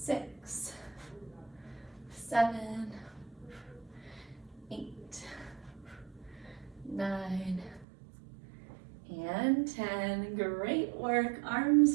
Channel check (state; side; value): drops out; left; at 7.9 s